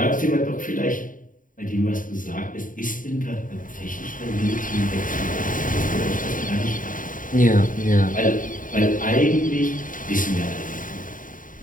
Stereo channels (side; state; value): right; late; 0.39 ms